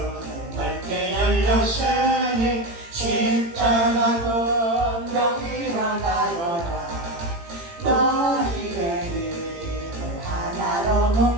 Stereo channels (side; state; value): left; late; 18 ms